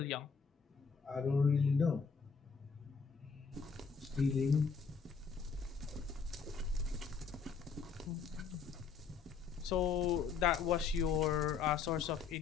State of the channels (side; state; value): right; quieter; 5.7 dB